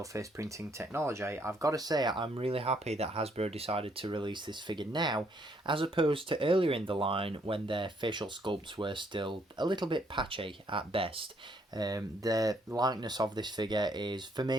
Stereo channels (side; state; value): both; normal; correlation 0.69